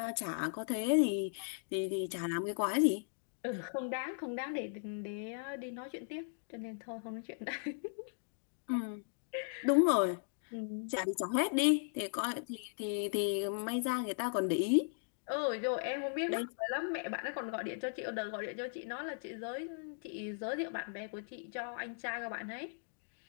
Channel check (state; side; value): silent; right; digital silence